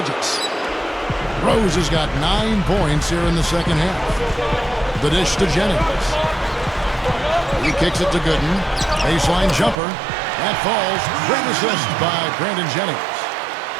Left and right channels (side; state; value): left; drops out; at 9.8 s